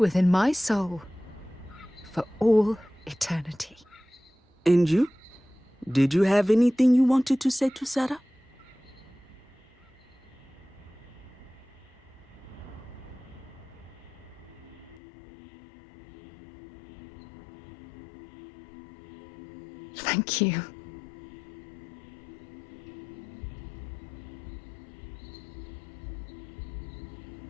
my soul, for all eternity. And you? Did you have anything you wanted to say to Sarah? Thank you.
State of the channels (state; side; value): drops out; right; at 15.0 s